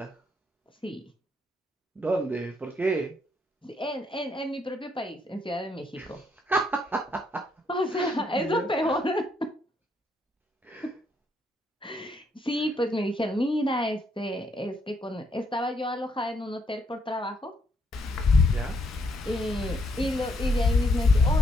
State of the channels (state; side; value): normal; both; correlation 0.73